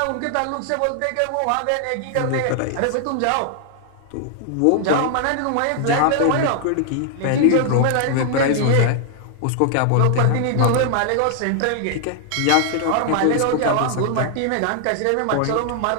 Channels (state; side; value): different; both; correlation 0.00